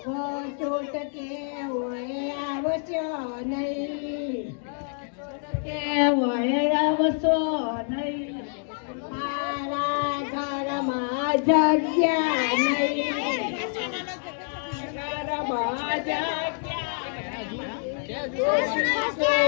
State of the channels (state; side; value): silent; right; 56 dB below the other